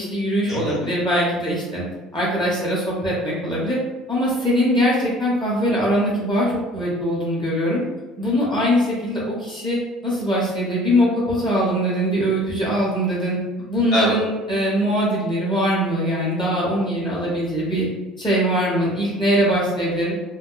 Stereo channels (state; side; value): normal; both; correlation 0.49